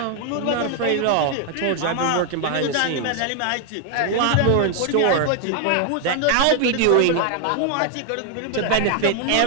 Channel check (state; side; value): different; both; correlation 0.00